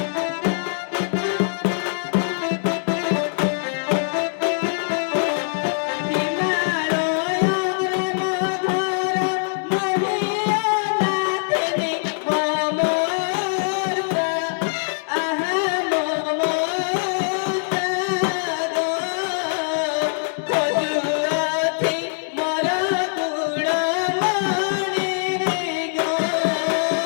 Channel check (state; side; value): silent; right; digital silence